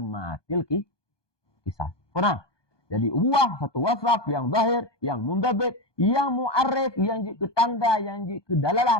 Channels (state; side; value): late; right; 1.2 ms